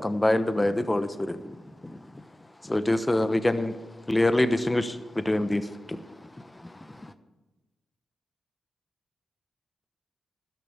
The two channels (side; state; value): both; normal; correlation 0.98